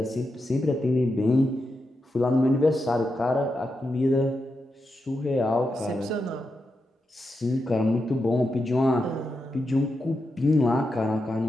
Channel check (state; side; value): normal; both; correlation 0.87